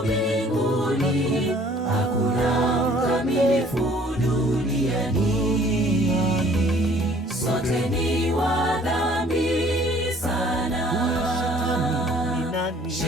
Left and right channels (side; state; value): both; normal; correlation 0.56